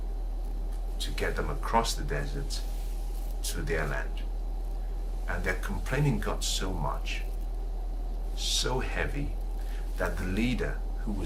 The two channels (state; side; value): identical; both; correlation 1.00